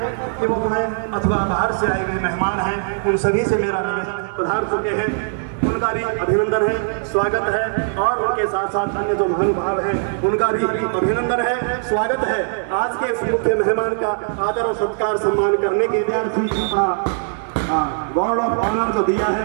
कि वो हमें अथवा बाहर से आए हुए मेहमान हैं, उन सभी से मेरा निवेदन पधार चुके हैं, उनका भी अभिनंदन है, स्वागत है और उनके साथ साथ अन्य जो महानुभाव हैं उनका भी अभिनंदन है, स्वागत है। आज के इस मुख्य मेहमान का आदर और सत्कार सम्मान करने के लिए गॉड ऑफ ऑनर जो दिया है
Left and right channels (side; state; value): left; silent; digital silence